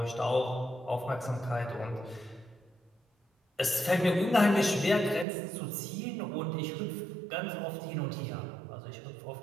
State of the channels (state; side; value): drops out; left; at 5.2 s